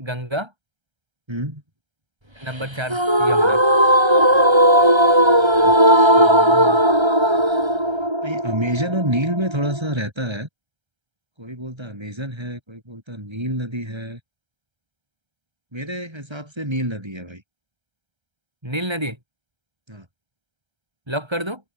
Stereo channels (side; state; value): left; late; 1.3 ms